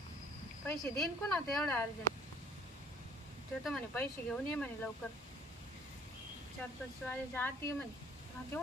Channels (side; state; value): both; normal; correlation 0.56